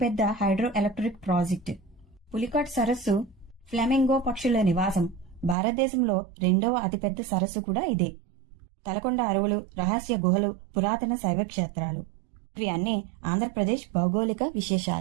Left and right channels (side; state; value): left; drops out; at 5.6 s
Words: హైడ్రో ఎలక్ట్రిక్ ప్రాజెక్టు. పులికాట్ సరస్సు ఫ్లెమింగో పక్షుల నివాసం. భారతదేశంలో 2వ అతిపెద్ద సరస్సు కూడా ఇదే. తలకొండ అడవులు, రహస్య గుహలు, పురాతన శైవ క్షేత్రాలు. ఇవి అన్నీ ఆంధ్రప్రదేశ్ భౌగోళిక